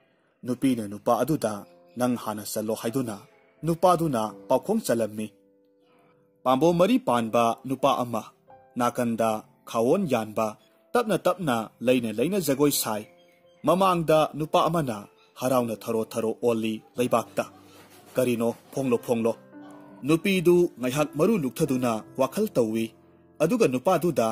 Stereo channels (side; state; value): both; identical; correlation 1.00